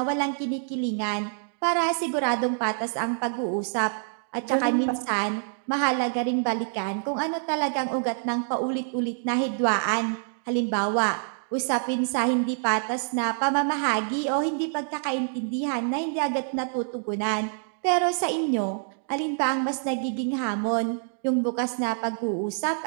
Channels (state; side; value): silent; left; digital silence